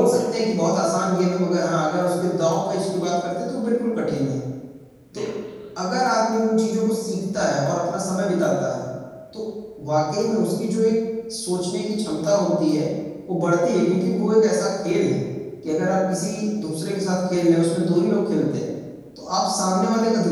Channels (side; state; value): both; identical; correlation 1.00